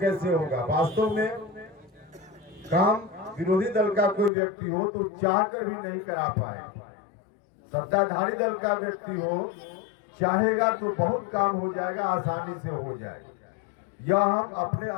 होगा? वास्तव में काम विरोधी दल का कोई व्यक्ति हो तो चाहकर भी नहीं करा पाए। सत्ताधारी दल का व्यक्ति हो, चाहेगा तो बहुत काम हो जाएगा, आसानी से हो जाएगा। यह हम अपने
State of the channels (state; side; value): drops out; right; at 4.3 s